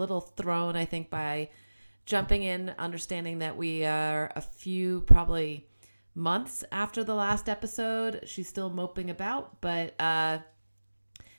thrown, I think, by jumping in, understanding that we are a few, probably months after the last episode. She's still moping about, but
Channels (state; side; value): inverted; both; correlation -1.00